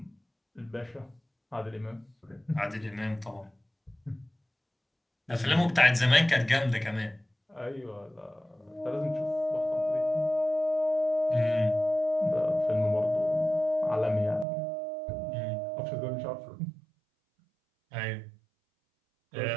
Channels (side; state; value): left; drops out; at 14.5 s